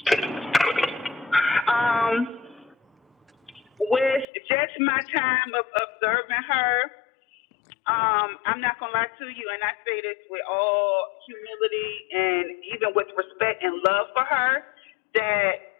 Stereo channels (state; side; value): drops out; right; at 4.2 s